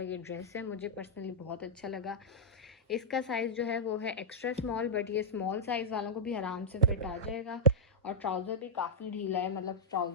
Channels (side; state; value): both; normal; correlation -0.08